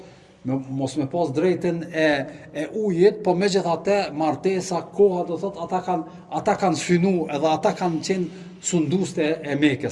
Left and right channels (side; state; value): both; identical; correlation 1.00